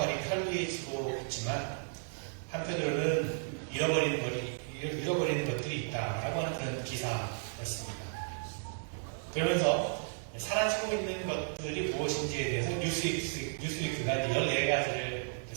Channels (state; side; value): silent; left; digital silence